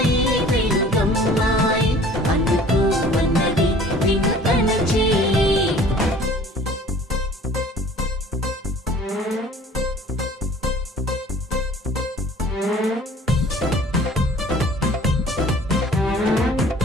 తెలుగమ్మాయి అందుకు మన్నది వింతన చేయి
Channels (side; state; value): both; normal; correlation 0.49